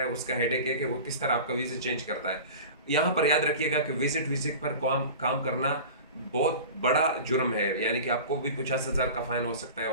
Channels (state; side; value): inverted; both; correlation -0.35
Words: उसका हेडेक है कि वो किस तरह आपका वीज़ा चेंज करता है। यहाँ पर याद रखिएगा कि विजिट विजिट पर काम करना बहुत बड़ा जुर्म है, यानी कि आपको भी 50,000 का फाइन हो सकता है,